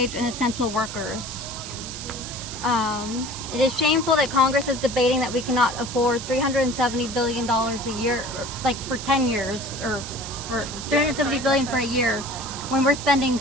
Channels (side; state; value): right; noise; hiss, 9 dB below the sound